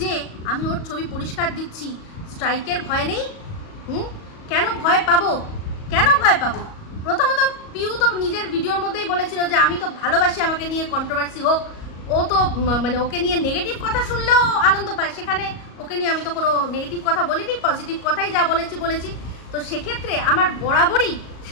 আমি ওর ছবি পরিষ্কার দিচ্ছি? স্ট্রাইকের ভয় নেই? কেন ভয় পাবো? কেন ভয় পাবো? প্রথমত পিউ তো নিজের ভিডিওর মধ্যেই বলেছিল যে আমি তো ভালোবাসি আমাকে নিয়ে কন্ট্রোভার্সি হোক। ও তো মানে ওকে নিয়ে নেগেটিভ কথা শুনলেও আনন্দ পায়, সেখানে ওকে নিয়ে আমি তো কোনো নেগেটিভ কথা বলিনি, পজিটিভ কথাই যা বলেছি। তো সেক্ষেত্রে আমার বরাবরই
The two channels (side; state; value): right; late; 37 ms